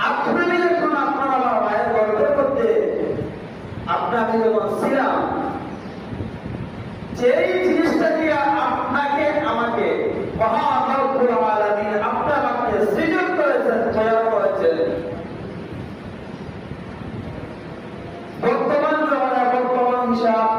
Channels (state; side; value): identical; both; correlation 1.00